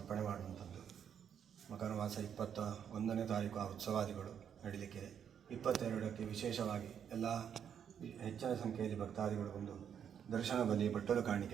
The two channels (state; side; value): quieter; left; 8.3 dB